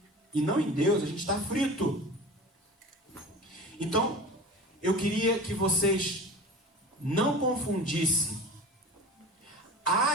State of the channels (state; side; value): normal; both; correlation 0.36